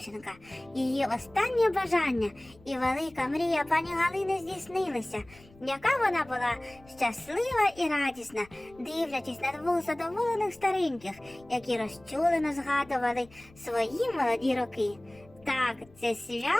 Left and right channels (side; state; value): left; noise; rumble, 25 dB below the sound